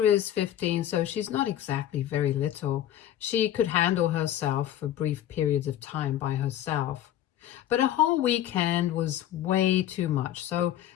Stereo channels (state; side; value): quieter; right; 11.7 dB